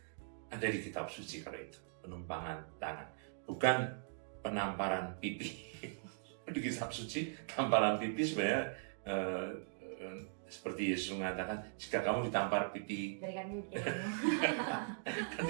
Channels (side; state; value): left; silent; digital silence